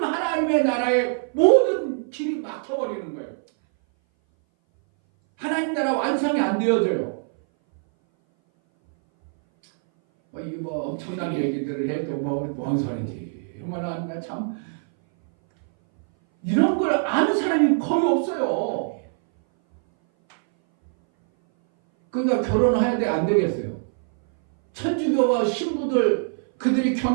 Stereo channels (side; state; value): left; silent; 59 dB below the other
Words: 하나님의 나라의 모든 길이 막혀버리는 거예요. 하나님 나라 완성이 안 되어져요. 이게 뭐 엄청난 얘기들을 해도 뭔 소리인지. 얼마나 참 이런 걸 아는 사람이 거의 없어요. 그러니까 결혼해야 돼, 안 되겠어요? 천주교와 신부들 그들이